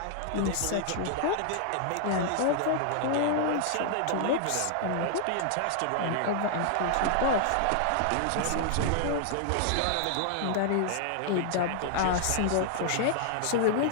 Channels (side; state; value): both; different; correlation -0.01